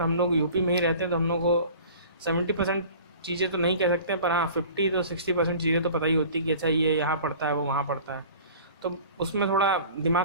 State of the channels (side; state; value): both; inverted; correlation -0.44